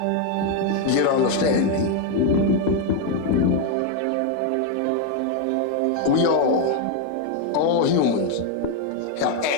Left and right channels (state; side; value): different; both; correlation 0.01